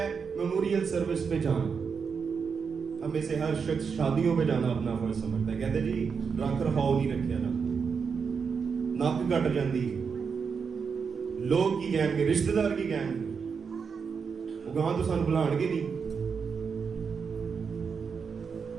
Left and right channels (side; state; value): left; quieter; 5.9 dB